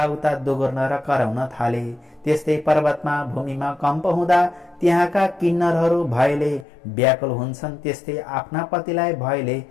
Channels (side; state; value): right; drops out; at 6.7 s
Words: दोगुर्न र कराउन थाले। त्यस्तै पर्वतमा भूमिमा कम्प हुँदा त्यहाँका किन्नरहरू भयले व्याकुल हुन्छन्। त्यस्तै आफ्ना पतिलाई भयले